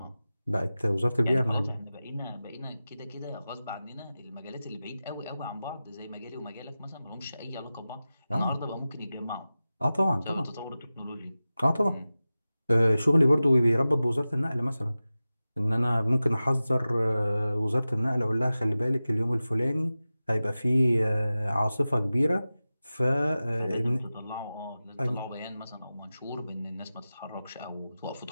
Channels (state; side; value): inverted; both; correlation -0.96